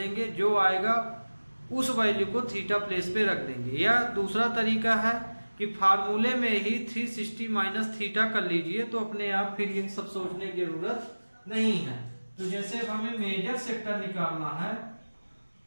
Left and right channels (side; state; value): both; inverted; correlation -1.00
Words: जो आएगा उस वैल्यू को थीटा प्लेस पे रख देंगे। या दूसरा तरीका है कि फार्मूले में ही 360 माइनस थीटा कर लीजिए, तो अपने आप फिर ये सब सोचने की जरूरत नहीं है। तो जैसे अब हमें मेजर सेक्टर निकालना है,